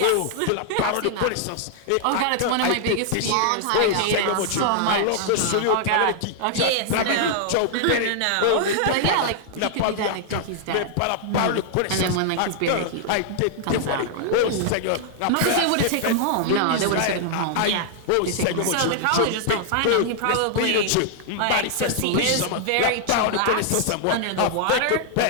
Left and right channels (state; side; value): different; both; correlation -0.01